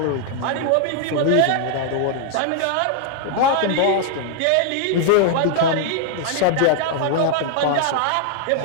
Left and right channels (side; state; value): both; different; correlation 0.00